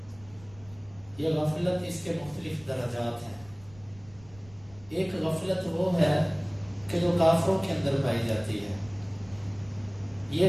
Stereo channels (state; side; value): noise; right; rumble, 23 dB below the sound